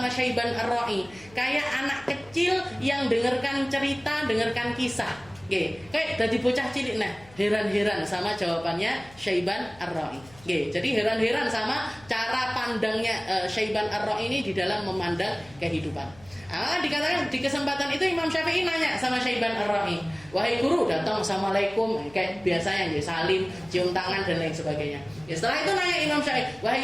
Syaiban Ar-Ra'i, kayak anak kecil yang dengarkan cerita, dengarkan kisah. Kayak dari bocah cilik. Nah, heran-heran sama jawabannya Syaiban Ar-Ra'i. Jadi heran-heran sama cara pandangnya Syaiban Ar-Ra'i ini di dalam memandang kehidupan. Dikatakan di kesempatan itu Imam Syafi'i nanya sama Syaiban Ar-Ra'i, wahai guru, datang assalamualaikum kayak biasanya, salim, cium tangan dan lain sebagainya. Setelah itu nanya Imam Syafi'i, wahai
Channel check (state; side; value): noise; left; hum, 24 dB below the sound